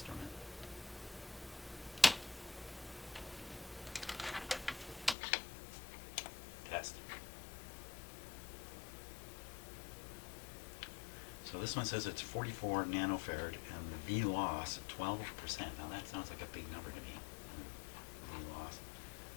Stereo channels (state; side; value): drops out; right; at 5.2 s